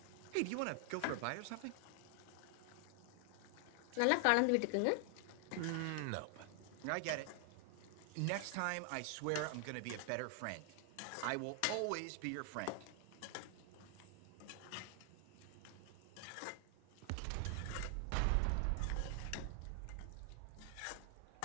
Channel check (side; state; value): both; different; correlation 0.00